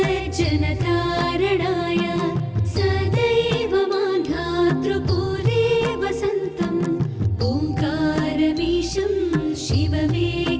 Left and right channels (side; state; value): both; identical; correlation 1.00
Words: सदैव मान्धातृपूरे वसन्तम् ओङ्कारमीशं